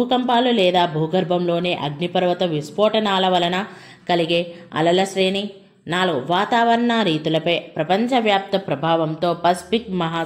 లేదా భూగర్భంలోని అగ్నిపర్వత విస్ఫోటనాల వలన కలిగే అలల శ్రేణి. 4 వాతావరణ రీతులపై ప్రపంచవ్యాప్త ప్రభావంతో పసిఫిక్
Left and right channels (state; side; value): identical; both; correlation 1.00